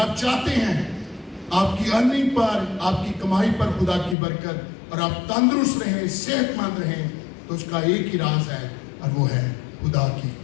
چاہتے ہیں آپ کی ارننگ پر، آپ کی کمائی پر خدا کی برکت اور آپ تندرست رہیں، صحت مند رہیں، تو اس کا ایک ہی راز ہے اور وہ ہے خدا کی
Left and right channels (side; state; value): right; drops out; at 4.2 s